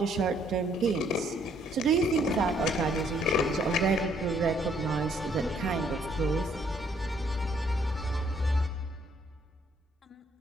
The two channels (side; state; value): both; normal; correlation 0.67